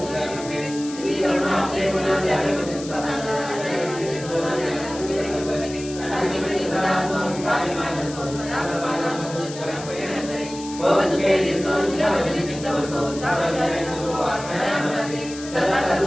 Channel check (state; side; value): noise; left; hiss, 14 dB below the sound